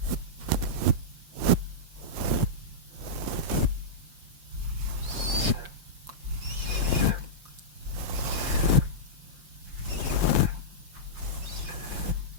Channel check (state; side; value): late; left; 5.7 ms